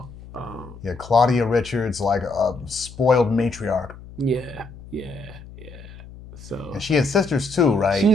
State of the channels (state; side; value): noise; left; hum, 17 dB below the sound